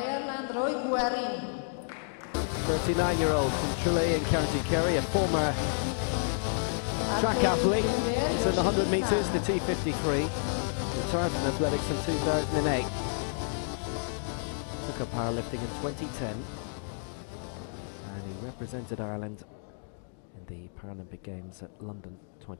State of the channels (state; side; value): silent; right; digital silence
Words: Roy Gearan. 39-year-old from Tralee in County Kerry, a former track athlete. He's in the 100 metres, the T53. Retired from athletics in 2008. Took up powerlifting in 2010. And he represented Ireland in the Paralympic Games at London